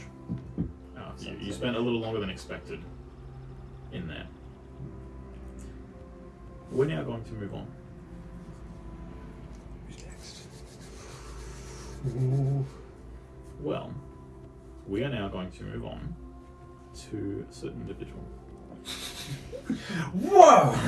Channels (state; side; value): identical; both; correlation 1.00